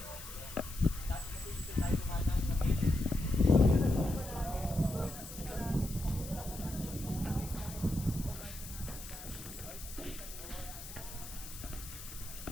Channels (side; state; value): left; noise; hiss, 12 dB below the sound